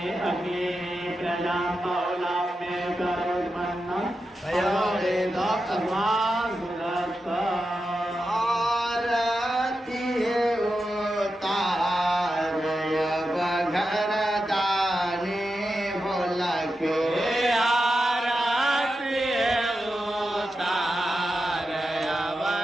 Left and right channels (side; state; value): both; normal; correlation 0.89